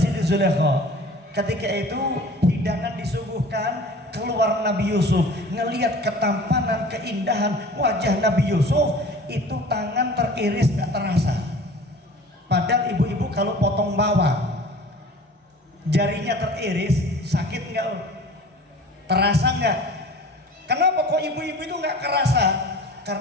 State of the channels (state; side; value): normal; both; correlation 0.43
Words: Zulaikha. Ketika itu hidangan disuguhkan, keluar Nabi Yusuf, ngelihat ketampanan, keindahan wajah Nabi Yusuf, itu tangan teriris nggak terasa. Padahal ibu-ibu kalau potong bawang, jarinya teriris, sakit nggak? Terasa nggak? Kenapa kok ibu-ibu itu nggak kerasa?